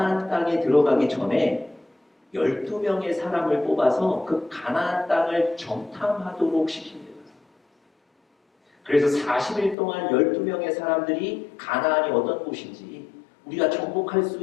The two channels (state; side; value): drops out; right; at 9.8 s